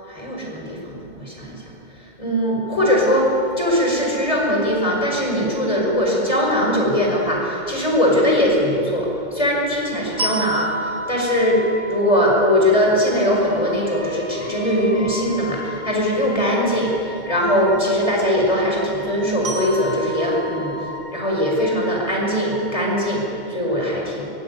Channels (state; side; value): late; left; 2.1 ms